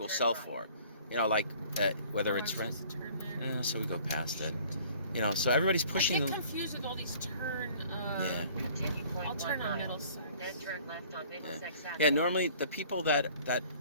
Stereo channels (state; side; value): inverted; both; correlation -0.52